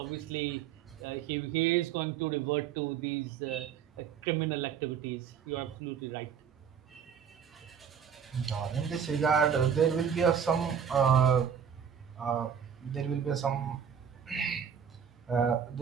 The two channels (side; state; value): left; quieter; 7.7 dB